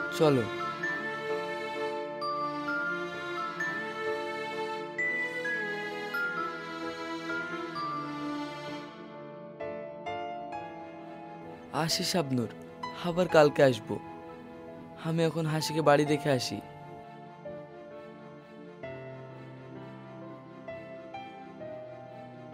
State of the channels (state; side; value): identical; both; correlation 1.00